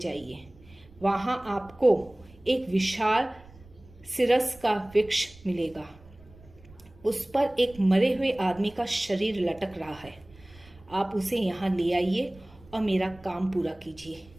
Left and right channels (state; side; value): noise; right; rumble, 24 dB below the sound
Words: वहाँ आपको एक विशाल सिरस का वृक्ष मिलेगा। उस पर एक मरे हुए आदमी का शरीर लटक रहा है। आप उसे यहाँ ले आइए और मेरा काम पूरा कीजिए।